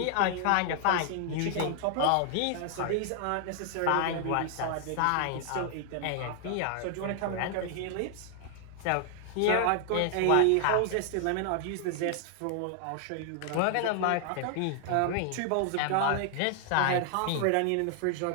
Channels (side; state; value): both; different; correlation 0.00